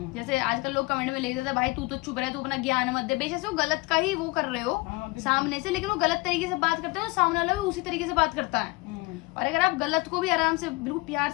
जैसे आजकल लोग कमेंट में लिख देते हैं भाई तू तो चुप रहे, तू अपना ज्ञान मत दे, बेशक से वो गलत का ही वो कर रहे हो सामने से, लेकिन वो गलत तरीके से बात करते हो, सामने वाला भी उसी तरीके से बात करता है। और अगर आप गलत को भी आराम से बिल्कुल प्यार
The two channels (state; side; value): quieter; right; 24.3 dB